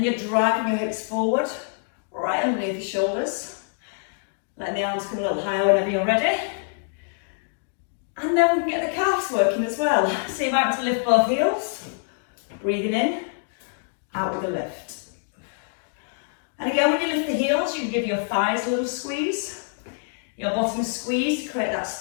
you're driving your hips forward, right underneath your shoulders. Letting the arms come a little higher whenever you're ready. And then we can get the calves working as well. So you might want to lift both heels. Breathing in, out with a lift. And again, when you lift the heels, you can give your thighs a little squeeze. Your bottom squeeze to create that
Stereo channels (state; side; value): silent; right; digital silence